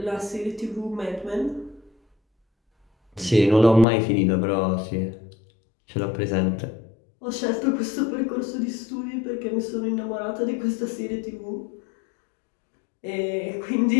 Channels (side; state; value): right; drops out; at 3.9 s